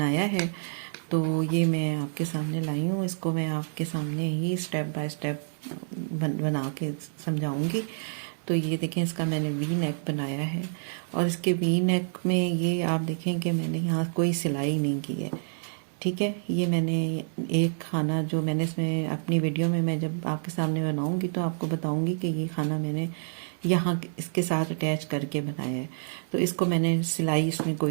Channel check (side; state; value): left; silent; 59 dB below the other